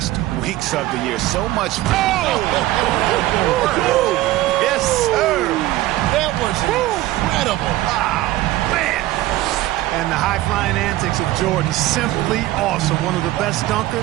weeks of the year. So much fun. Yes, sir. That was incredible. Wow, man. And the high-flying antics of Jordan, simply awesome. One of the best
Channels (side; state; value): left; quieter; 16.4 dB